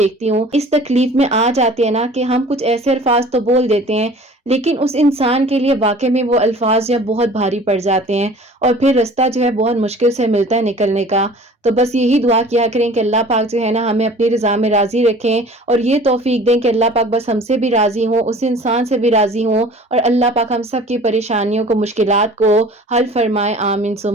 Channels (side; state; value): both; normal; correlation 0.46